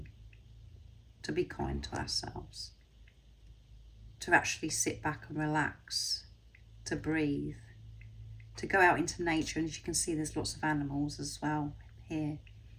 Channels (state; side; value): identical; both; correlation 1.00